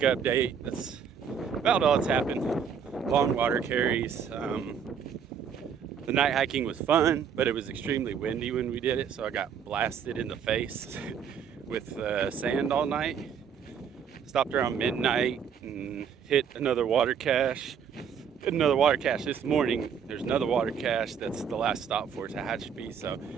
That's about all that's happened. Long water carries. The night hiking was fun, but it was extremely windy when we did it, so I got blasted in the face with sand all night. Stopped around midnight and hit another water cache. Hit another water cache this morning. There's another water cache that's the last stop for Tehachapi. So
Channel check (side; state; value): left; quieter; 7.3 dB